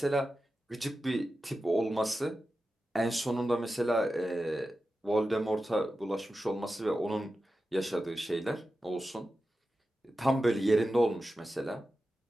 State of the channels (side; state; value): both; normal; correlation 0.92